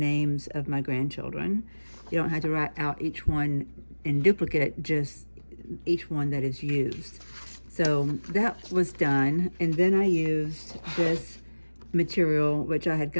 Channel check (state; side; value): inverted; both; correlation -1.00